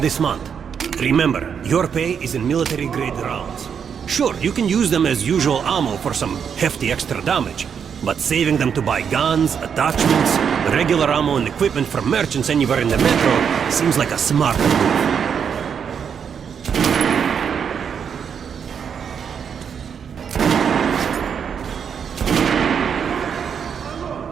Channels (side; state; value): left; quieter; 7.3 dB